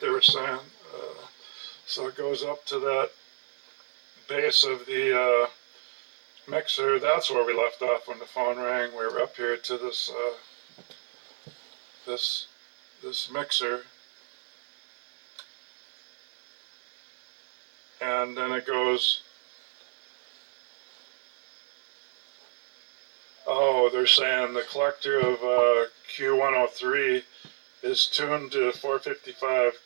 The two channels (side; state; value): left; silent; 58 dB below the other